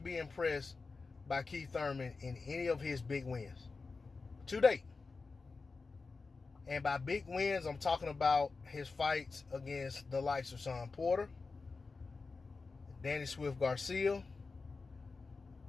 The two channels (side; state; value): right; quieter; 4.2 dB